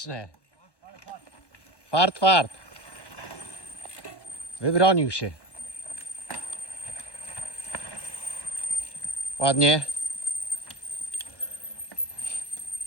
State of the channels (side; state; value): right; late; 1.1 ms